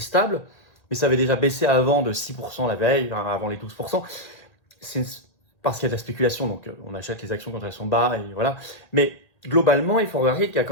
mais ça avait déjà baissé avant de 6% la veille, avant les 12%. C'est parce qu'il y a de la spéculation, donc on achète les actions quand elles sont bas, et voilà. Mais globalement, il faut regarder qu'il y a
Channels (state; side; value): late; right; 1.8 ms